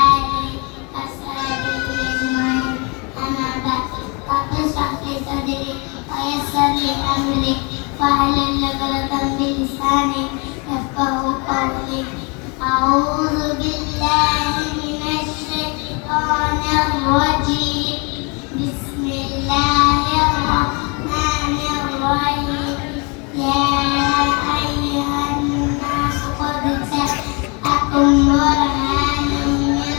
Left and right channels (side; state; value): right; quieter; 31.7 dB